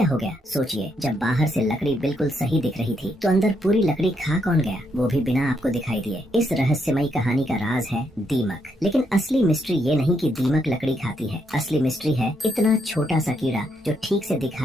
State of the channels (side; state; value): both; normal; correlation 0.77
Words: हो गया? सोचिए, जब बाहर से लकड़ी बिल्कुल सही दिख रही थी तो अंदर पूरी लकड़ी खा कौन गया, वो भी बिना आपको दिखाई दिए। इस रहस्यमयी कहानी का राज है दीमक। लेकिन असली मिस्ट्री ये नहीं कि दीमक लकड़ी खाती है। असली मिस्ट्री है इतना छोटा सा कीड़ा जो ठीक से